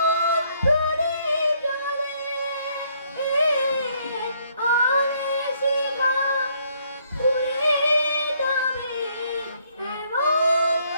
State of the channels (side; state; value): both; inverted; correlation -0.68